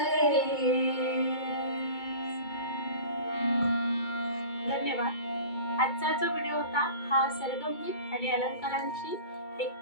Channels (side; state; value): right; late; 2.2 ms